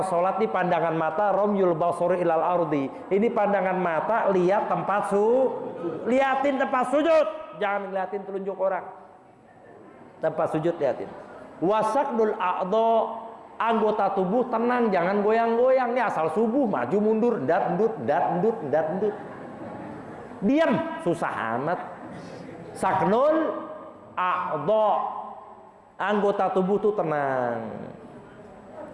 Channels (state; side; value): identical; both; correlation 1.00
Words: sholat di pandangan mata, romyul basori ilal ardi. Ini pandangan mata, lihat tempat liatin tempat sujud. Jangan ngeliatin telunjuk orang. Tempat sujud liatin. Wasaqdul a'dha, anggota tubuh tenang, jangan goyang-goyang. Nih asal subuh maju mundur, dat-ndut. Diam, susah amat. Saknul a'dha, anggota tubuh tuh tenang.